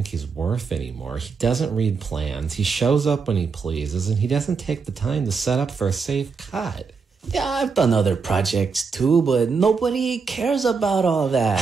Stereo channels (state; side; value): quieter; left; 5.1 dB